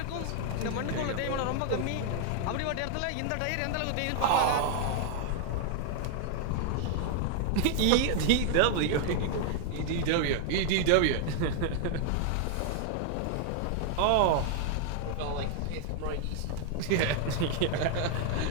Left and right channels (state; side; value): different; both; correlation 0.00